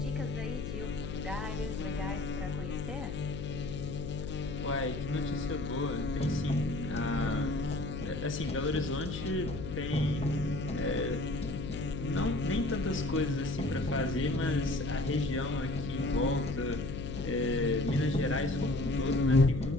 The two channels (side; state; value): left; noise; hum, 6 dB below the sound